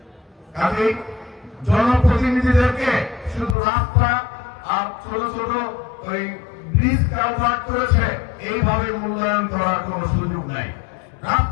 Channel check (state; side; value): drops out; right; at 3.6 s